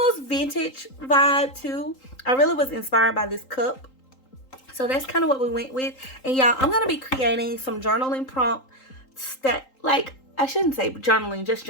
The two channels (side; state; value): right; late; 3.8 ms